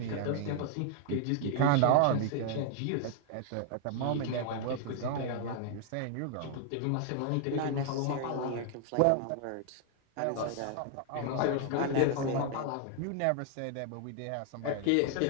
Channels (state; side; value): different; both; correlation 0.00